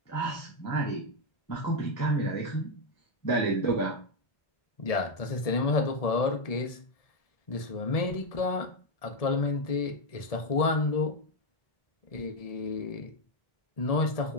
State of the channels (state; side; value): late; right; 1.7 ms